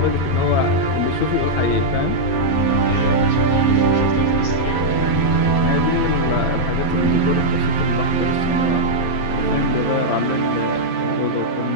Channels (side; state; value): right; late; 11 ms